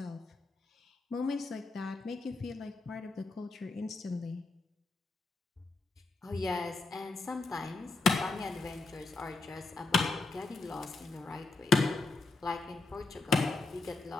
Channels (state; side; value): quieter; right; 3.6 dB